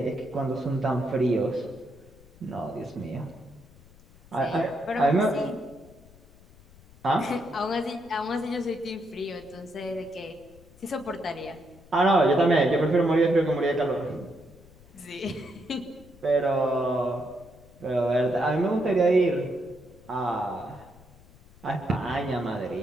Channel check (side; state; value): left; noise; rumble, 25 dB below the sound